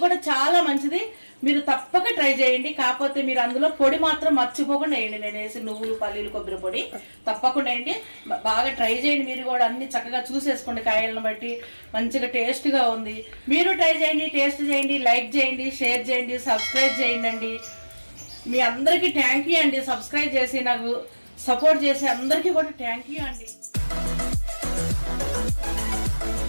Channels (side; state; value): both; inverted; correlation -1.00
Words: కూడా చాలా మంచిది. మీరు తప్పక ట్రై చేయండి. కాకపోతే మీరు అందులో పొడి మాత్రం మర్చిపోకుండా వేయండి. నేను వేసి నువ్వులు పల్లీలు కొబ్బరి పొడి తప్పకుండా వేయండి. బాగా ట్రై చేయండి. మీరు కూడా అన్ని చక్కగా చూసేసుకోండి, కాయలను బట్టి మంచిగా టేస్ట్గా ఉంది. మీరు ట్రై చేయండి, టేస్ట్ చేయండి, లైక్ చేయండి, షేర్ చేయండి, సబ్స్క్రైబ్ చేయండి. మీ అందరికీ థ్యాంక్ యూ అండి. సబ్స్క్రైబ్ చేసి నాకు సపోర్ట్ చేసి అందరికీ కూడా థ్యాంక్ యూ అండి.